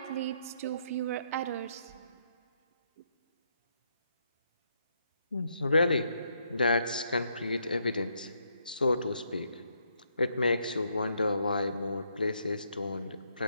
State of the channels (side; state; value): both; inverted; correlation -0.75